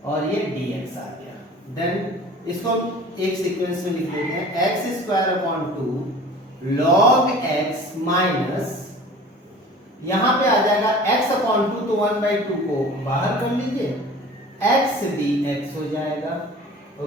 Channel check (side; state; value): both; normal; correlation 0.42